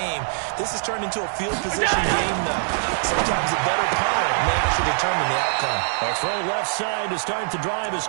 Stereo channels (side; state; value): left; silent; 55 dB below the other